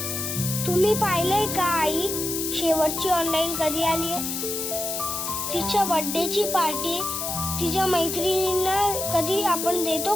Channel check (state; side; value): noise; left; hiss, 3 dB below the sound